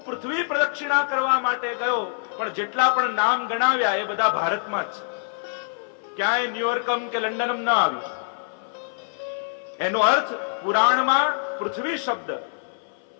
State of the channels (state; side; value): silent; right; 57 dB below the other